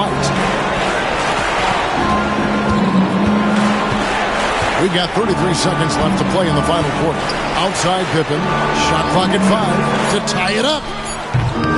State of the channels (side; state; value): both; identical; correlation 1.00